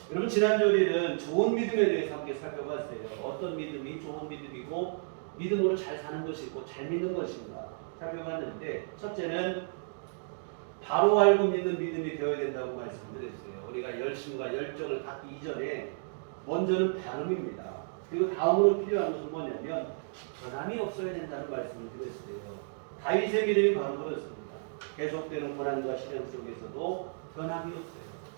여러분 지난주 우리는 좋은 믿음에 대해서 함께 살펴봤어요. 어떤 믿음이 좋은 믿음이고 믿음으로 잘 사는 것이고 잘 믿는 것인가 살펴봤는데 첫째는 바로 알고 믿는 믿음이 되어야 된다고 말씀드렸어요. 우리가 열심과 열정을 갖기 이전에 먼저는 발음입니다. 그리고 다음으로 필요한 것은 뭐냐면 변함이 없어야 된다는 말씀을 드렸어요. 다윗의 믿음이 바로 그렇습니다. 계속되는 고난과 시련 속에서도 변함이 없어요.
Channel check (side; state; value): left; silent; digital silence